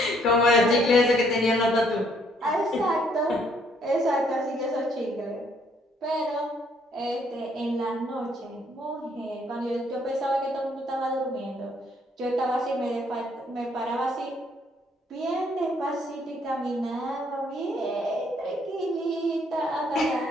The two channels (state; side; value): normal; both; correlation 0.66